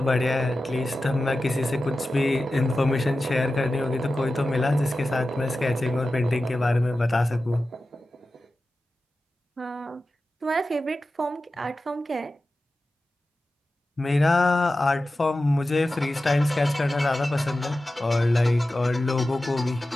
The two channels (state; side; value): normal; both; correlation 0.94